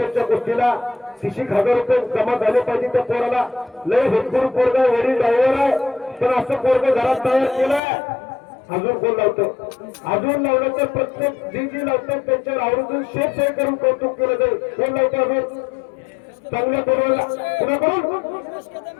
गोष्टीला. 30,000 रुपये जमा झाले पाहिजे त्या पोराला. लय भरपूर पोरगा वडील ड्रायव्हर आहे, पण असं पोरग घरात तयार केलंय. अजून कोण लावतं? अजून लावलं तर प्रत्येक जी लावतात त्यांच्यावर आवर्जून शेत करून कौतुक केलं जाईल. कोण लावतं अजून? चांगल्या पोराला कुणाकडून?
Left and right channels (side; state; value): right; drops out; at 7.8 s